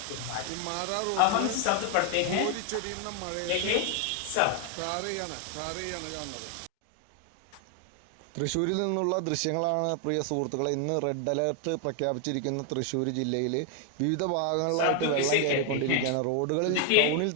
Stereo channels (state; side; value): different; both; correlation 0.00